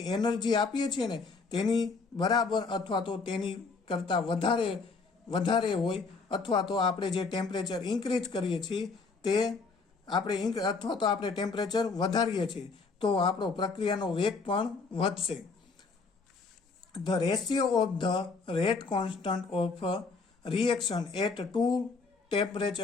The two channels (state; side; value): quieter; right; 4.4 dB